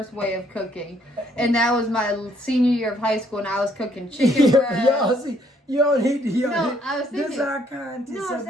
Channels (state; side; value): normal; both; correlation 0.67